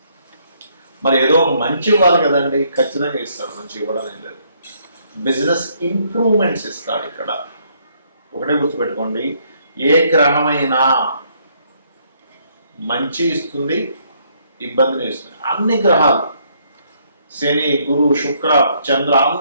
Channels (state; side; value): inverted; both; correlation -0.69